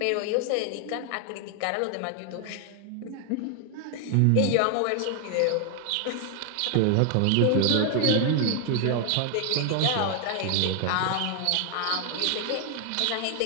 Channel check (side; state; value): both; different; correlation 0.00